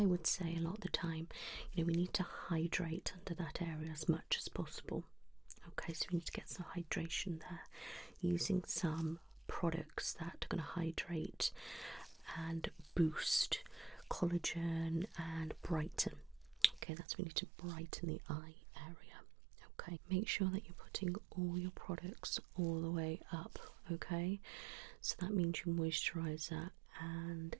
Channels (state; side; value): drops out; left; at 16.9 s